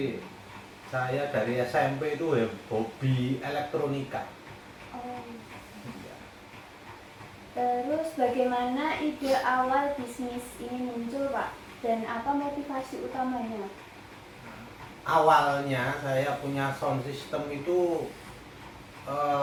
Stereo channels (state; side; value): identical; both; correlation 1.00